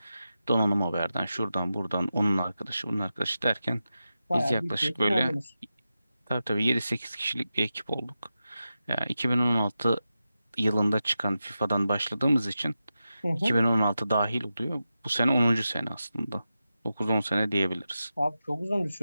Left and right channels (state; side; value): inverted; both; correlation -0.91